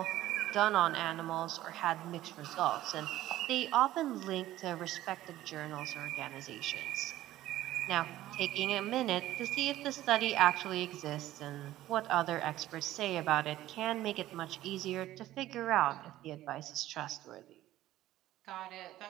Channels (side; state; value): left; quieter; 14.7 dB